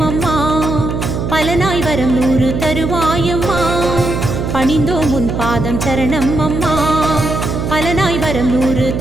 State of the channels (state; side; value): noise; right; hum, 3 dB below the sound